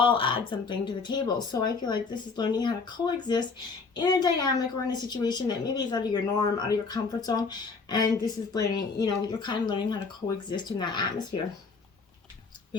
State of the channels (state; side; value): quieter; right; 4.6 dB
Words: add something to the table. So I feel like this is learning how to coexist in a dynamic or in a situation that maybe is out of your norm, out of your comfort zone. And this is learning, you're kind of learning how to coexist in that atmosphere. We